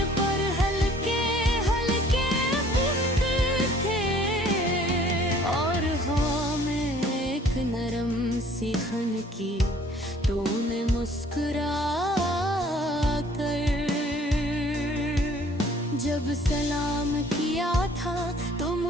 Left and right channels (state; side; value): normal; both; correlation 0.55